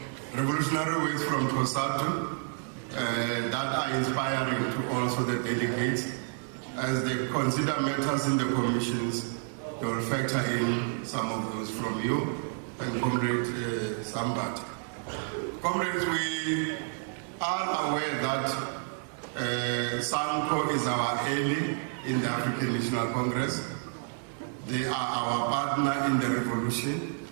revolutionary words from Tosatu that are inspiring to also the delegates. As they consider matters in the commissions, they will factor in some of those from you and Comrade Sambat. Comrades, we are aware that SANCO is our ally in the African National Congress. They are our partner in the revolution,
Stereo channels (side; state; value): left; silent; 58 dB below the other